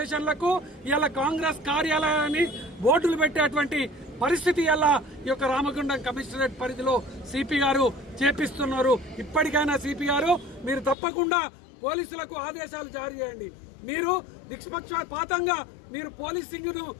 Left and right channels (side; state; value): right; drops out; at 11.0 s